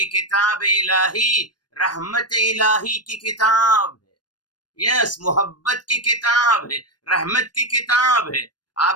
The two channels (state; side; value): late; right; 0.70 ms